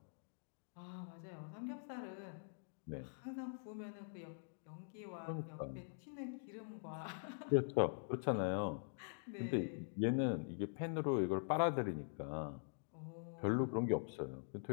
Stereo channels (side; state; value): right; silent; digital silence